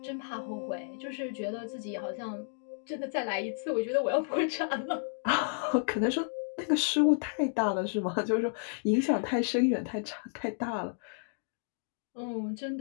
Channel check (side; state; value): right; silent; digital silence